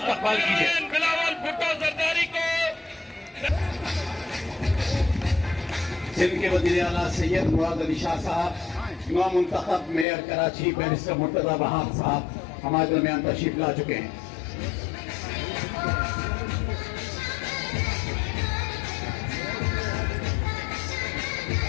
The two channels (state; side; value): drops out; right; at 10.1 s